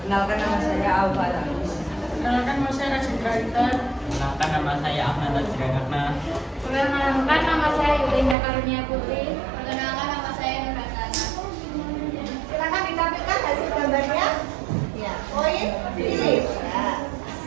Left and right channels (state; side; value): drops out; left; at 8.3 s